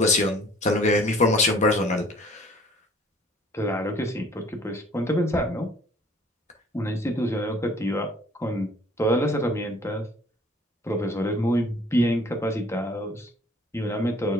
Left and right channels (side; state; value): both; normal; correlation 0.54